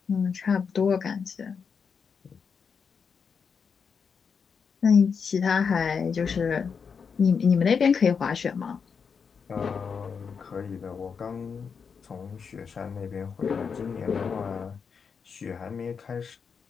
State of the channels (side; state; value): right; quieter; 6.1 dB